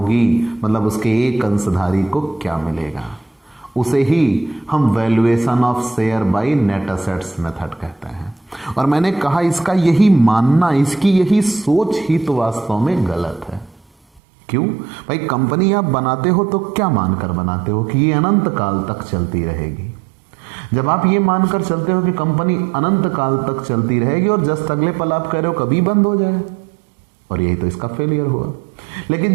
मतलब उसके एक अंशधारी को क्या मिलेगा। उसे ही हम valuation of share by net assets method कहते हैं। और मैंने कहा इसका यही मानना, इसकी यही सोच ही तो वास्तव में गलत है। क्यों भाई? कंपनी आप बनाते हो तो क्या मानकर बनाते हो कि ये अनंत काल तक चलती रहेगी। जब आप ये मानकर चलते हो कि कंपनी अनंत काल तक चलती रहेगी और जस्ट अगले पल आप कह रहे हो कभी बंद हो जाए, और यही तो इसका फेलियर हुआ। लेकिन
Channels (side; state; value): left; drops out; at 14.2 s